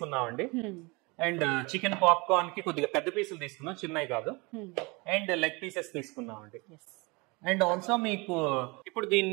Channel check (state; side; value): quieter; left; 27.0 dB